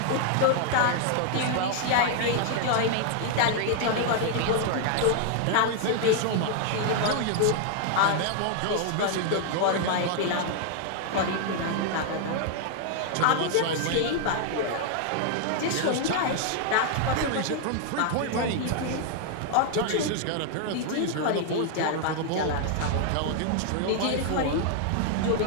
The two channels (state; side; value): different; both; correlation 0.00